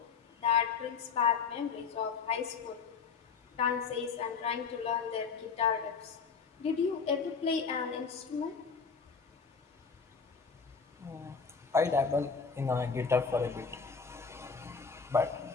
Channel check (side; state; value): right; quieter; 5.5 dB